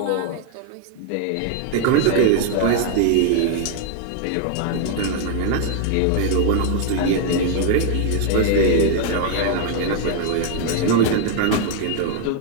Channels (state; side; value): different; both; correlation 0.00